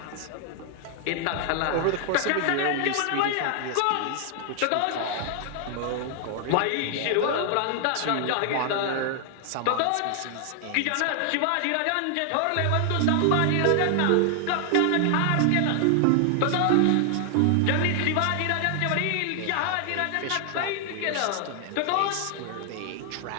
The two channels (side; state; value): both; different; correlation 0.00